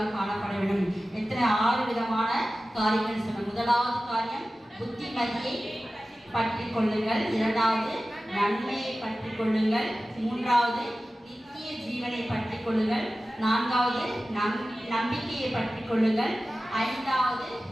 காணப்பட வேண்டும். எத்தனை 6 விதமான காரியங்கள் சொன்ன. முதலாவது காரியம் புத்திமதியை பற்றி கொள்ளுங்கள், இரண்டாவது நன்மையை பற்றி கொள்ளுங்கள், மூன்றாவது நித்திய ஜீவனை பற்றி கொள்ளுங்கள், நான்காவது நம்பிக்கையை பற்றி கொள்ளுங்கள், ஐந்தாவது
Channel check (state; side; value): normal; both; correlation 0.96